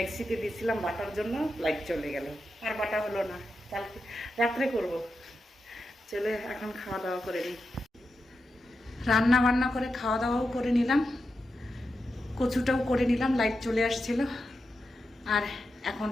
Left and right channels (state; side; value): normal; both; correlation 0.88